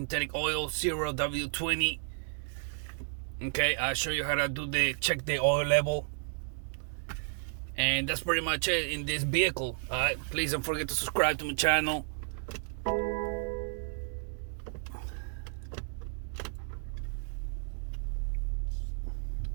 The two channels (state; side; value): silent; left; digital silence